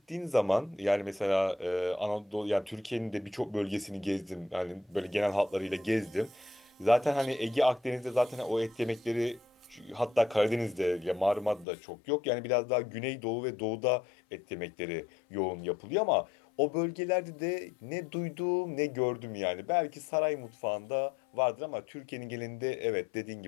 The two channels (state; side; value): drops out; right; at 11.7 s